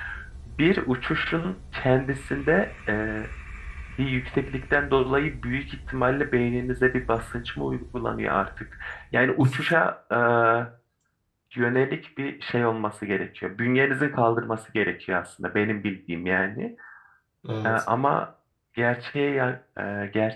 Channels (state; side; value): identical; both; correlation 1.00